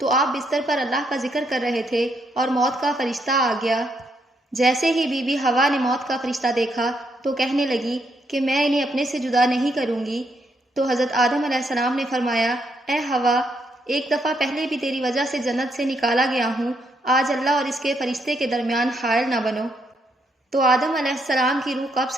آپ بستر پر اللہ کا ذکر کر رہے تھے اور موت کا فرشتہ آ گیا۔ جیسے ہی بی بی حوا نے موت کا فرشتہ دیکھا تو کہنے لگی کہ میں انہیں اپنے سے جدا نہیں کروں گی۔ تو حضرت آدم علیہ السلام نے فرمایا، اے حوا، ایک دفعہ پہلے بھی تیری وجہ سے جنت سے نکالا گیا ہوں، آج اللہ اور اس کے فرشتے کے درمیان حائل نہ بنو۔ تو آدم علیہ السلام کی روح قبض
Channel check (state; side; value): normal; both; correlation 0.76